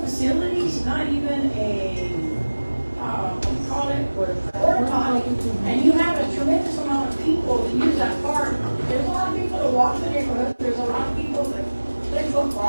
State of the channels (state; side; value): inverted; both; correlation -1.00